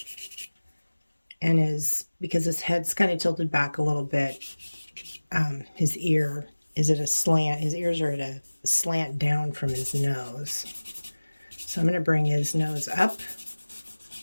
And because his head's kind of tilted back a little bit, his ear is at a slant. His ears are at a slant down from his nose. So I'm going to bring his nose up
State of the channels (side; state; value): both; inverted; correlation -1.00